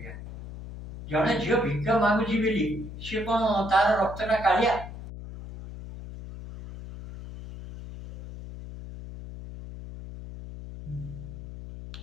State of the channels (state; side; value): noise; left; hum, 11 dB below the sound